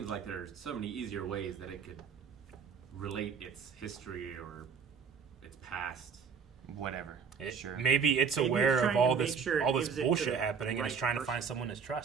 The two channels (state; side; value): quieter; left; 6.3 dB